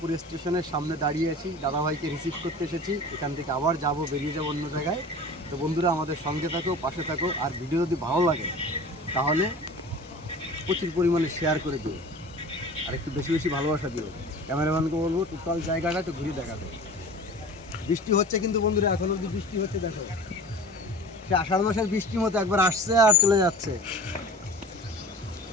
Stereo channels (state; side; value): normal; both; correlation 0.39